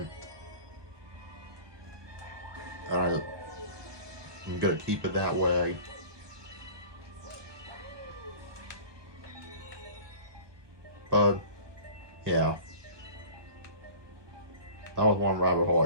And I'm gonna keep it that way. But, yeah. That was one rabbit hole I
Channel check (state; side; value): late; left; 1.5 ms